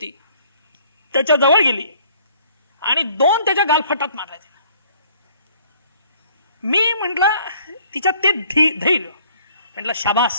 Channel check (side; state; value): both; inverted; correlation -0.59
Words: त्याच्या जवळ गेली आणि 2 त्याच्या गालफटात मारल्या. मी म्हटलं तिच्या ते धैर्य, म्हटलं